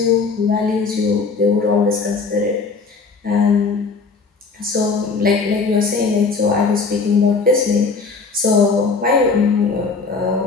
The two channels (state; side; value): quieter; right; 4.6 dB